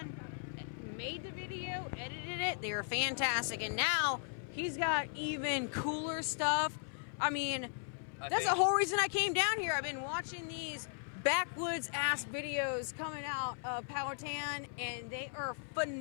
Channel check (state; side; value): silent; right; 53 dB below the other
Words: made the video, edited it, they were fantastic. And now he's got even cooler stuff. I mean, that's the whole reason I came down here. I've been watching these backwoods ass videos coming out of Powhatan, and they are